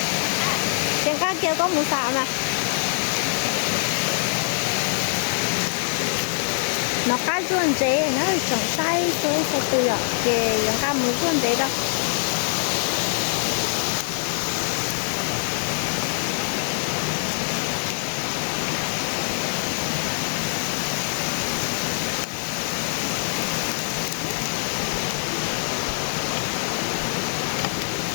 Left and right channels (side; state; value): right; silent; 63 dB below the other